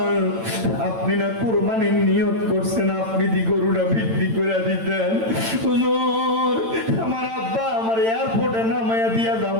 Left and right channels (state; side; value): late; left; 8.9 ms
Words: আপনি না কোরবানির নিয়ত করছেন, আপনি দি গরুটা বিক্রি করে দিতেন। হুজুর আমার আব্বা আমার এয়ারপোর্টে নামাইয়া দিয়া